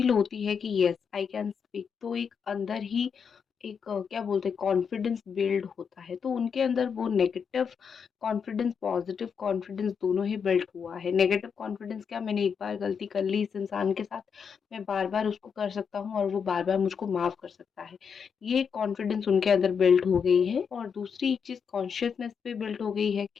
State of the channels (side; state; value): right; quieter; 6.6 dB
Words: होती है कि येस आई कैन स्पीक, तो एक अंदर ही एक क्या बोलते हैं कॉन्फिडेंस बिल्ड होता है, तो उनके अंदर वो नेगेटिव कॉन्फिडेंस, पॉजिटिव कॉन्फिडेंस दोनों ही बिल्ड हुआ है। नेगेटिव कॉन्फिडेंस क्या, मैंने एक बार गलती कर ली इस इंसान के साथ, मैं बार-बार उसको कर सकता हूँ और वो बार-बार मुझको माफ़ कर सकता है। ये कॉन्फिडेंस उनके अंदर बिल्ड हो गई है और दूसरी एक चीज़ कॉन्शियसनेस पे बिल्ड हो गई है